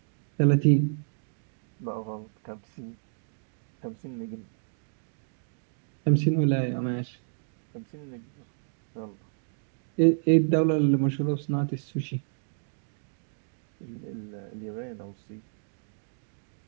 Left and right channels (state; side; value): silent; left; digital silence